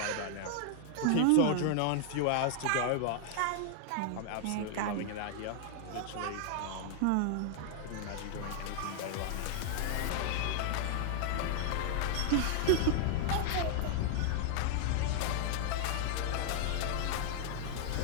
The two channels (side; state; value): both; different; correlation 0.00